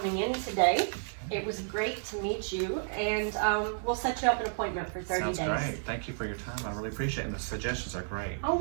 in today. It was great to meet you, and we'll set you up an appointment for 30 Sounds days. great. Thank you for your time. I really appreciate it. And the suggestions are great. Oh,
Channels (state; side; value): silent; left; digital silence